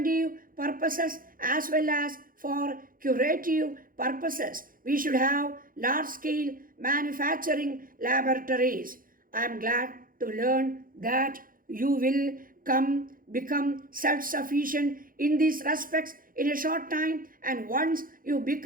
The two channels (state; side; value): late; left; 0.41 ms